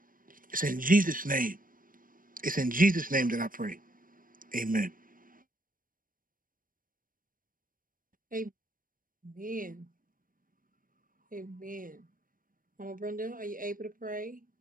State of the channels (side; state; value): left; late; 0.40 ms